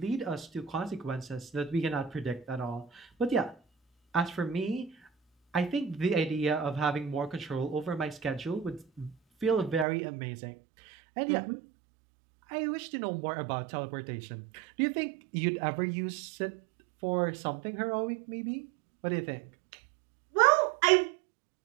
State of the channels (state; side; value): drops out; left; at 9.9 s